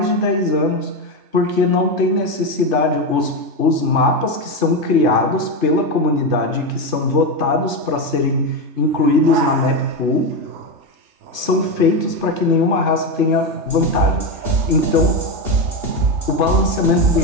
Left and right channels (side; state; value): left; late; 3.3 ms